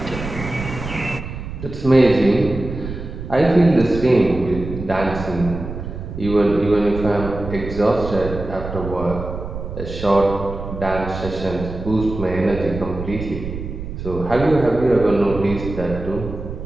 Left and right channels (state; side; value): noise; right; rumble, 8 dB below the sound